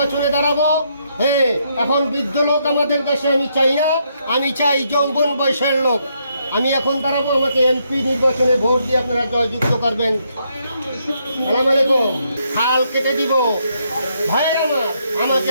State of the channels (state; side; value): inverted; both; correlation -0.75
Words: দাঁড়াবো। হ্যাঁ, এখন বৃদ্ধ লোক আমাদের দেশে আমি চাই না, আমি চাই যৌবন বয়সের লোক। আমি এখন দাঁড়াবো, আমাকে এমপি নির্বাচনে ভোট দিয়ে আপনারা জয়যুক্ত করবেন। সালাম আলাইকুম। হাল কেটে দিব ভাইয়ের আমার, আমাকে